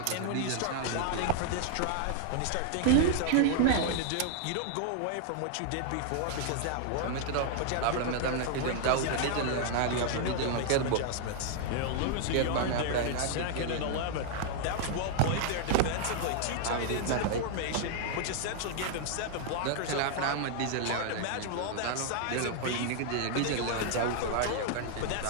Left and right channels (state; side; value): different; both; correlation 0.00